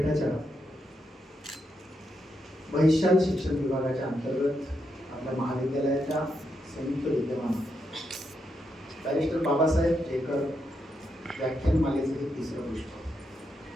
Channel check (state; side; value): normal; both; correlation 0.82